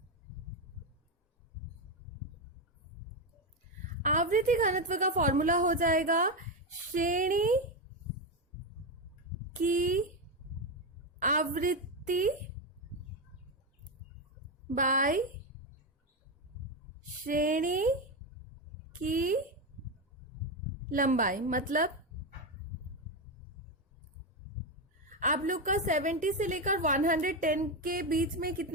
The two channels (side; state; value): both; normal; correlation 0.10